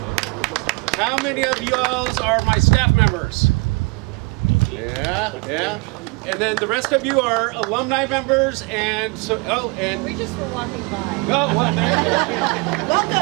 How many of you are my staff members? Yeah. And then the rest of you are alumni members, and so. And We just were walking by. oh, what?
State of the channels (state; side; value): quieter; left; 29.1 dB